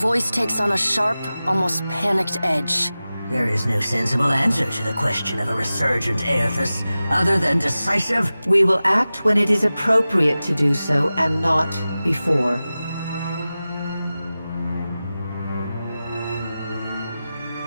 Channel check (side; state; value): both; inverted; correlation -0.95